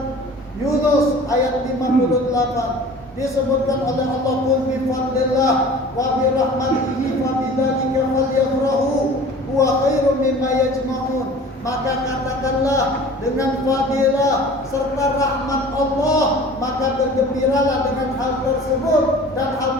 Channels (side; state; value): both; normal; correlation 0.43